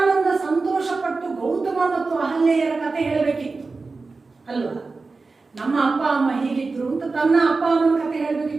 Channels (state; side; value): quieter; left; 4.0 dB